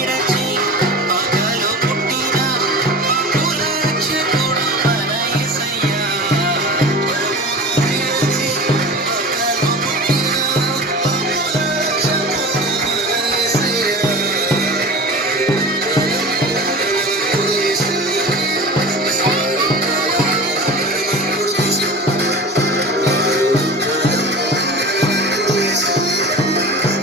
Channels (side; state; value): both; normal; correlation 0.34